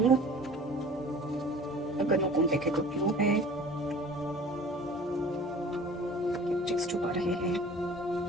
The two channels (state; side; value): normal; both; correlation 0.45